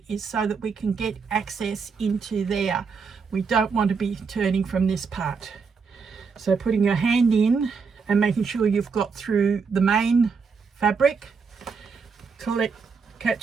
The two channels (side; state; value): left; quieter; 5.4 dB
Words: is so that we can get access into there. We don't want to be turning from this part. So putting your hand in and making sure you've got through the main fabric,